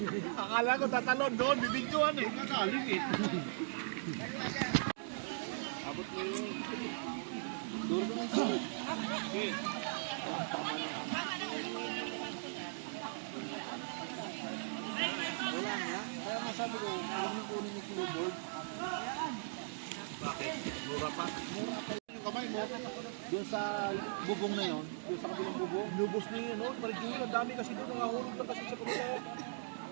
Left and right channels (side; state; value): left; silent; digital silence